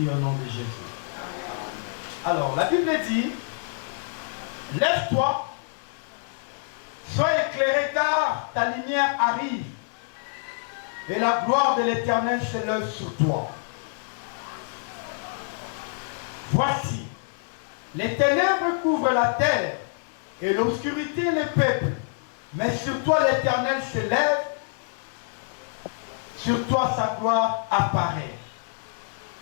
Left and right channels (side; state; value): right; silent; digital silence